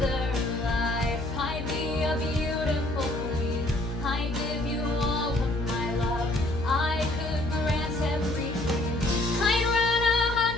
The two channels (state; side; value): noise; left; hum, 7 dB below the sound